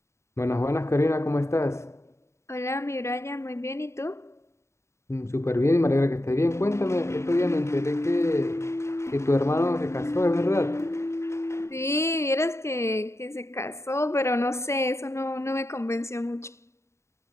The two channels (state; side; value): late; right; 0.13 ms